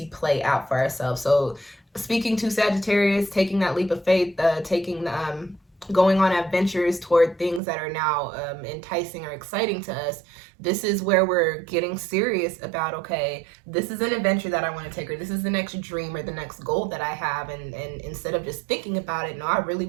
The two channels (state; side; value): drops out; left; at 7.6 s